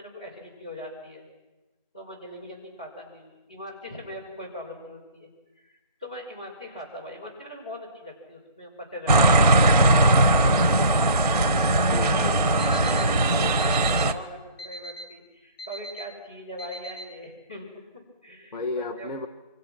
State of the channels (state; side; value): inverted; both; correlation -0.47